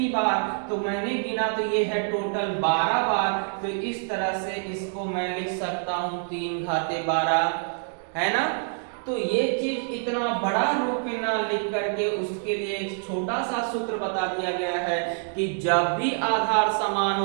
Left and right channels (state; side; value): silent; left; 61 dB below the other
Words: बार, तो मैंने गिना तो ये है टोटल 12 बार। तो इस तरह से इसको मैं लिख सकता हूं 3 घाते 12, है ना। तो ये चीज इतना बड़ा रूप में ना लिख करके उसके लिए एक छोटा सा सूत्र बता दिया गया है कि जब भी आधार समान